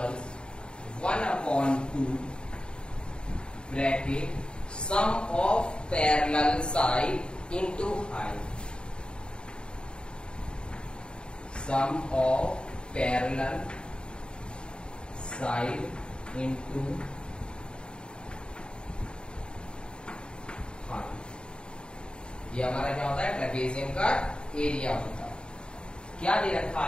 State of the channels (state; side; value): late; right; 0.051 ms